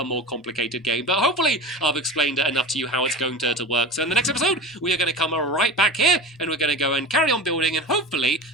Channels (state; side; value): normal; both; correlation 0.31